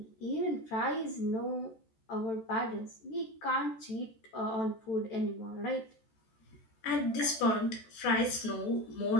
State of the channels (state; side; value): late; right; 14 ms